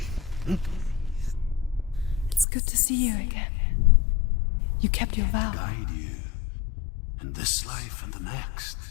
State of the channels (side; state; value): right; drops out; at 2.5 s